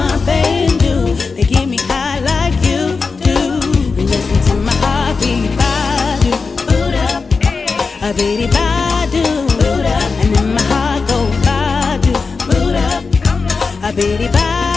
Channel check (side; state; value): right; quieter; 4.6 dB